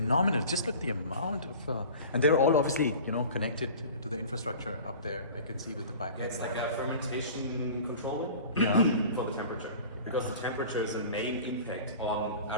Just look the amount of, and they're all obviously, you know, connected to the infrastructure up there. I can see with the pipe. It's like a fermentation control for the temperature, because the temperature is a main impact on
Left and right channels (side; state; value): both; inverted; correlation -0.40